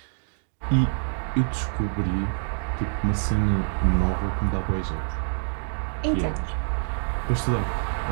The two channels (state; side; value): silent; left; digital silence